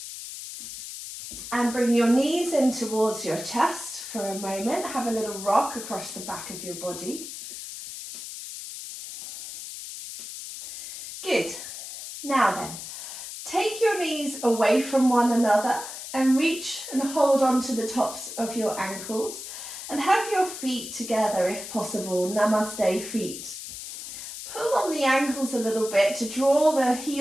And bring your knees in towards your chest for a moment. Have a little rock across the back of your body. Good. Now then, take your knees away from one another and reach and hold on to the tops of your ankles. And have your feet together if possible, Namaste feet. Pull on the ankles a little bit to draw the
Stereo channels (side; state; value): left; noise; hiss, 10 dB below the sound